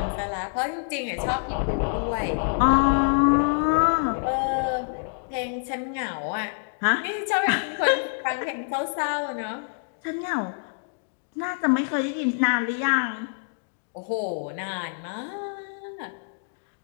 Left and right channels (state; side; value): silent; right; digital silence